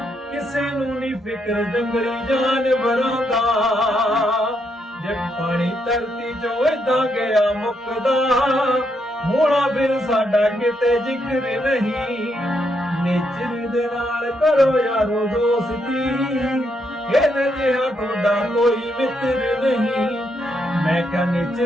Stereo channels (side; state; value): both; normal; correlation 0.78